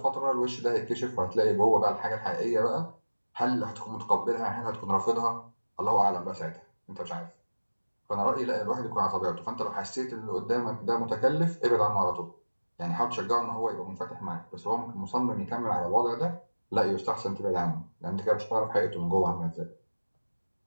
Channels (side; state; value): both; inverted; correlation -1.00